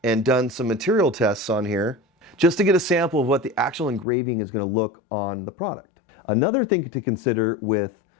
and done some material tests on here just to get a sample of what the actual engraving is going to look on the product. Another thing to consider with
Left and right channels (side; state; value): right; drops out; at 4.0 s